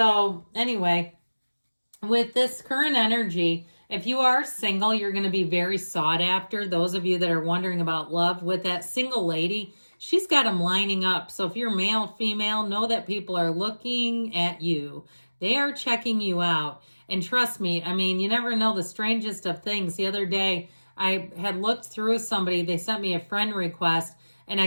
anyway, with this current energy, if you are single, you're going to be very sought after. Those of you that are wondering about love, with that single lady, she's got them lining up. So if you're male, female, know that people are looking at you. They are checking you out. And trust me, I mean, you never know the strangest of things. The other day, I had looked through somebody. They sent me a friend request. And I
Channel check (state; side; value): inverted; both; correlation -1.00